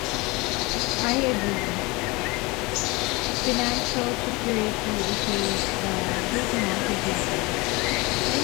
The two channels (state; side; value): quieter; right; 24.7 dB